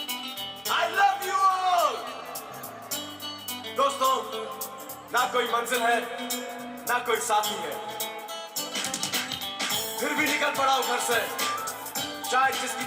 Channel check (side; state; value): both; identical; correlation 1.00